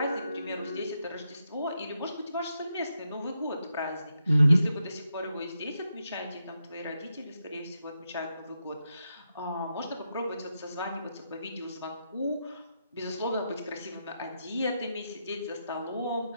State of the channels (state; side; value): inverted; both; correlation -0.84